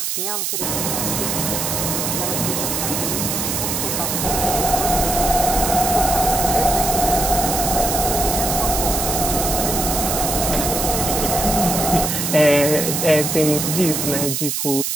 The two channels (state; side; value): noise; right; hiss, 1 dB below the sound